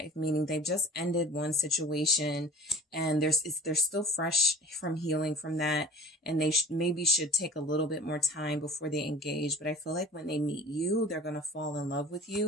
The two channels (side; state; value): both; normal; correlation 0.43